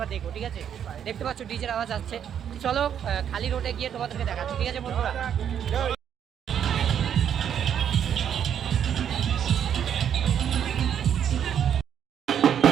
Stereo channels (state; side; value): quieter; left; 8.9 dB